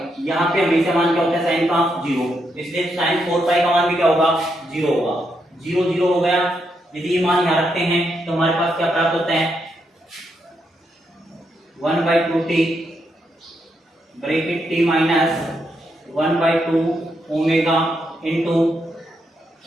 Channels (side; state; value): both; normal; correlation 0.80